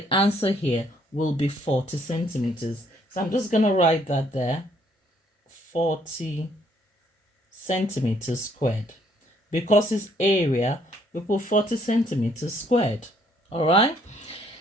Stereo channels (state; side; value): normal; both; correlation 0.66